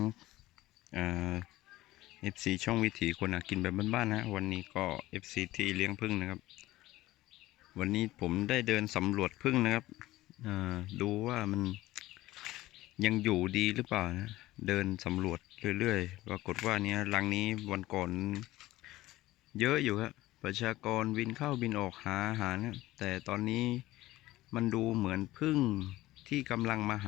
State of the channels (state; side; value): quieter; right; 17.1 dB